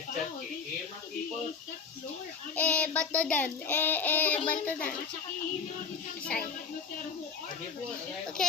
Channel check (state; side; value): quieter; right; 5.6 dB